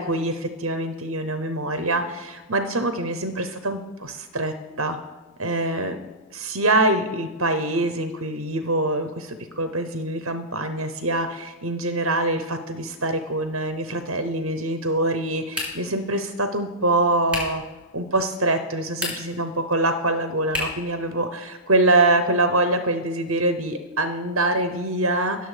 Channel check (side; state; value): both; normal; correlation -0.20